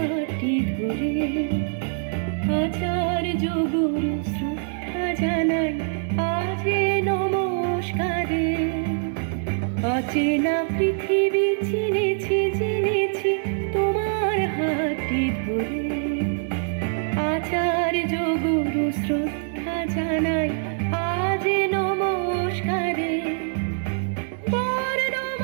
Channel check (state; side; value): silent; left; 62 dB below the other